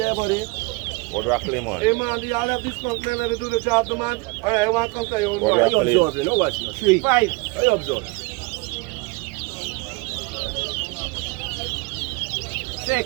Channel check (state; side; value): quieter; left; 26.6 dB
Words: buddy. Board rock lemon. Hey man, y'all have this skunk man, let me do the job, the man. Alright, I want to come to you. Board What rock you lemon. observe, you know what? 3. 5. How you observe?